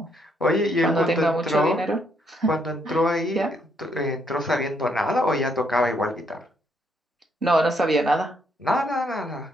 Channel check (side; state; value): both; normal; correlation 0.73